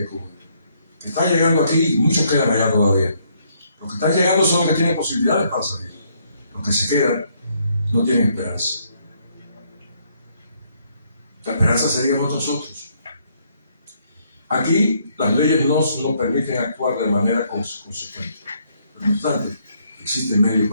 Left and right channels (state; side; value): inverted; both; correlation -0.70